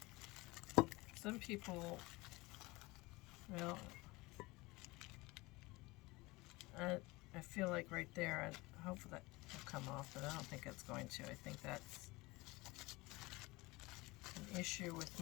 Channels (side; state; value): right; quieter; 22.4 dB